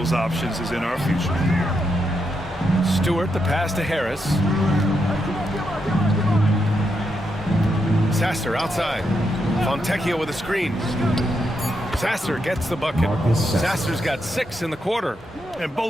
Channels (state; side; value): normal; both; correlation 0.82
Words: options is in our future. Stewart, the pass to Harris. Sasser outside. Fontecchio with a screen. Sasser gets the bucket. Sasser's got 6 in the quarter. And